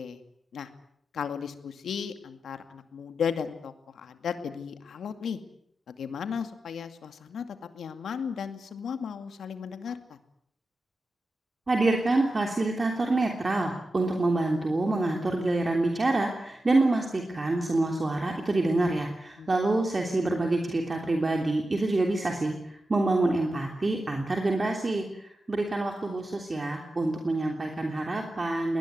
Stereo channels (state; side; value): normal; both; correlation 0.91